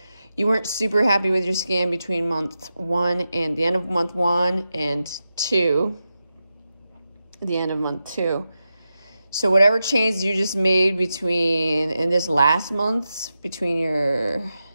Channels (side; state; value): both; inverted; correlation -0.90